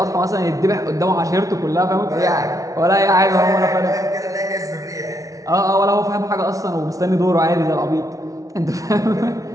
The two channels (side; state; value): left; late; 0.17 ms